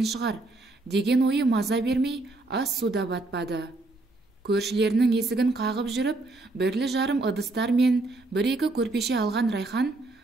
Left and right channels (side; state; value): left; quieter; 3.0 dB